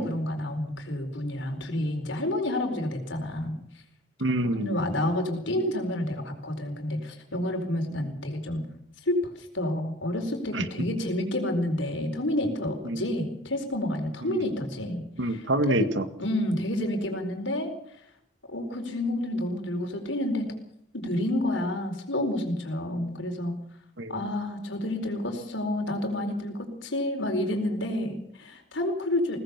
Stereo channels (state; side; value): normal; both; correlation 0.47